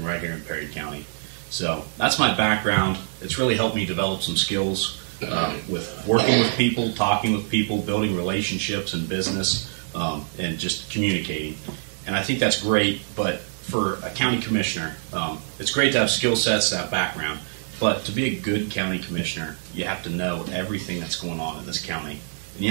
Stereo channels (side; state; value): left; silent; 62 dB below the other